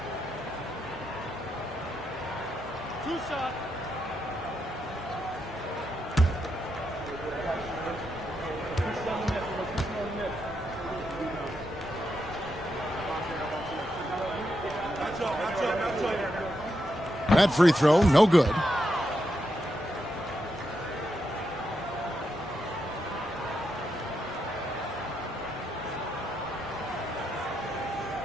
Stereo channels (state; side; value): normal; both; correlation 0.83